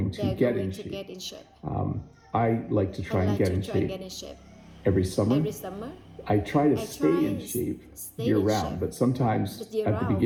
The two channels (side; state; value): both; identical; correlation 1.00